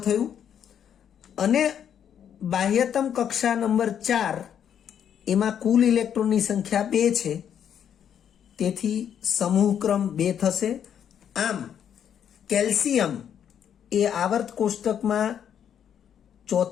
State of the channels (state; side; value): quieter; right; 8.9 dB